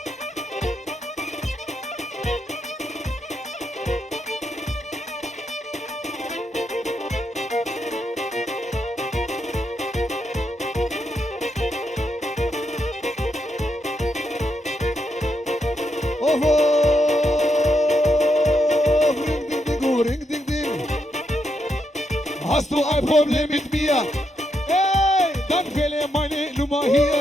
Hast du ein Problem mit mir? Ey, dann wähle meine Nummer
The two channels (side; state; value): both; normal; correlation 0.81